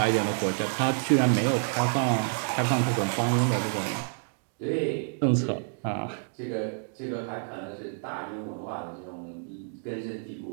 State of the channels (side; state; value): left; silent; 59 dB below the other